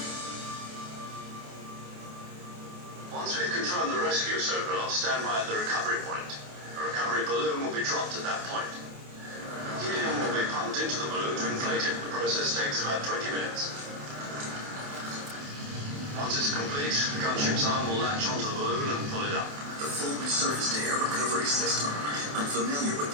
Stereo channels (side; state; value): left; late; 28 ms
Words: Once we've confirmed the rescue of Sokolov, stand by at the recovery point. A recovery balloon will be dropped at that point. Helium will be pumped into the balloon to inflate it. The process takes about 20 minutes. Once it's complete, the gunship's arm will latch onto the balloon and pull it up. The full surface-to-air recovery system. I'm familiar with